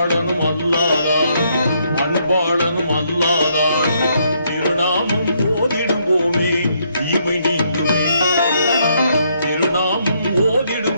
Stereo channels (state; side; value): inverted; both; correlation -0.73